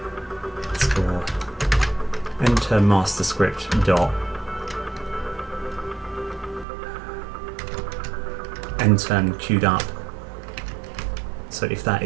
enter master script dot end turn queued up. So if that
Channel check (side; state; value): left; drops out; at 6.7 s